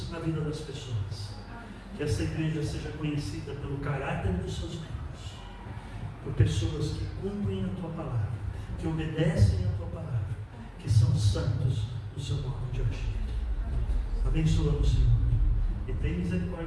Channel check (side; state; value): both; identical; correlation 1.00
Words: na vida das pessoas, que esta igreja seja conhecida pelo caráter dos seus membros, por pessoas que cumprem a Tua palavra, que obedecem a Tua palavra, que são santos no seu modo de agir. Abençoa-nos, Senhor, e tem